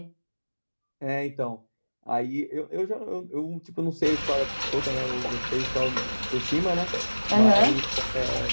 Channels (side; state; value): both; inverted; correlation -1.00